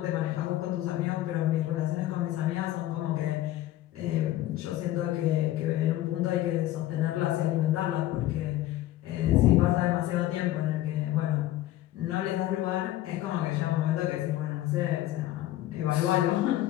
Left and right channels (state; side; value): quieter; right; 14.5 dB